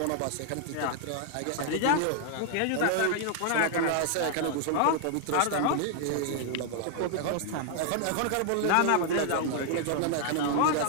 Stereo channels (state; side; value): different; both; correlation 0.00